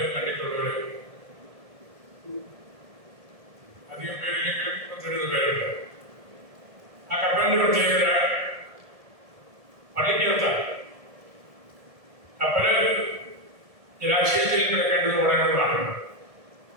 കണ്ടിട്ടുള്ളവർ അധികം പേരിലെങ്കിലും 30 പേരുണ്ട്. പ്രത്യേകത പള്ളിക്കകത്താണ്. കപ്പല് ജലാശയത്തിൽ കിടക്കേണ്ടത് ഉടനെയാണ്.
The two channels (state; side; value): late; left; 1.7 ms